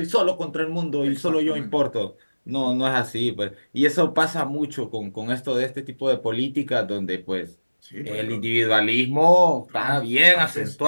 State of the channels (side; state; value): both; inverted; correlation -1.00